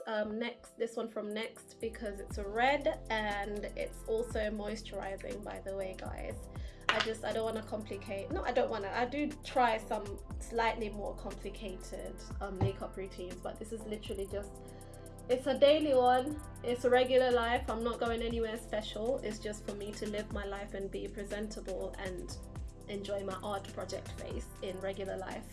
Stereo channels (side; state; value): both; identical; correlation 1.00